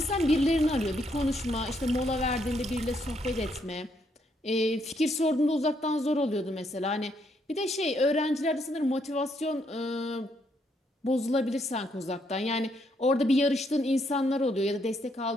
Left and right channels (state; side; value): normal; both; correlation 0.74